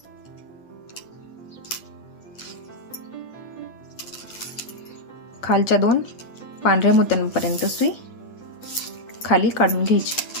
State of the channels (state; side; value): late; right; 8.7 ms